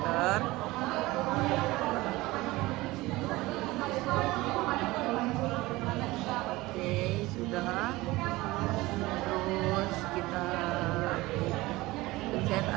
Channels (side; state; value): left; quieter; 19.9 dB